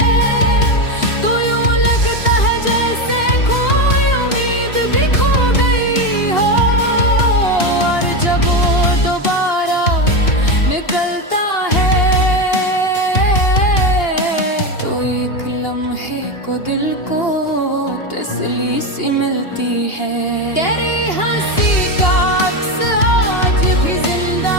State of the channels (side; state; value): right; late; 2.8 ms